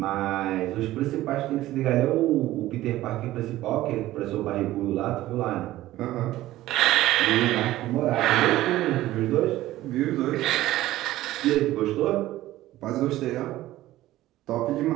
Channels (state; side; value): quieter; left; 15.5 dB